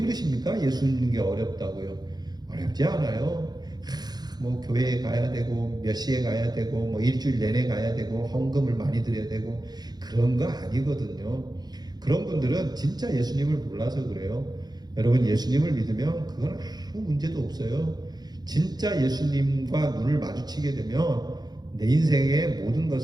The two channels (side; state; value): left; late; 0.19 ms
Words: 예수 믿는 게 어렵다고요. 어렵지 않아요. 뭐 교회에 가야 되고 몇 시에 가야 되고 뭐 일주일 내내 가야 되고 헌금을 많이 드려야 되고 그런 거 아니거든요. 그런 분들은 진짜 예수님을 몰라서 그래요. 여러분, 예수님을 믿으면 그건 아무 문제도 없어요. 진짜 예수님과 눈을 마주치게 되면 내 인생의 모든